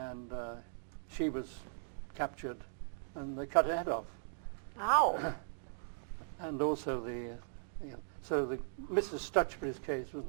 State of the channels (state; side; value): silent; left; digital silence